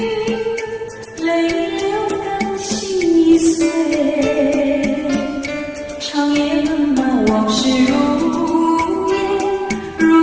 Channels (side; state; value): both; identical; correlation 1.00